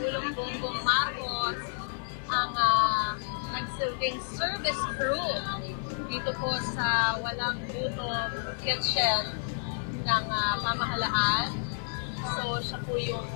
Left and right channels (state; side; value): silent; right; digital silence